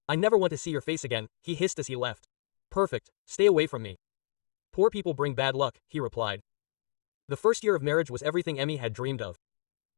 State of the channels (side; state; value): right; silent; digital silence